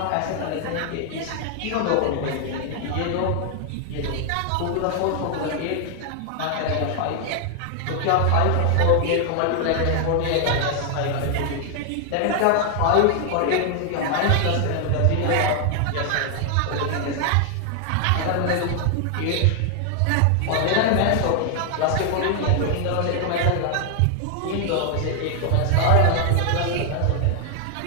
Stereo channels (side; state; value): both; different; correlation 0.00